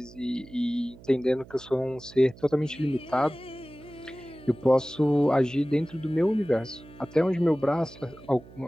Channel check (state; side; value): noise; right; hum, 20 dB below the sound